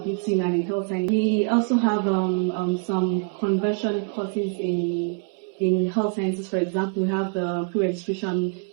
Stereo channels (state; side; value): quieter; left; 38.1 dB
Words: and in health science. We also have some conversion courses in health sciences. For example, we have the pre-registration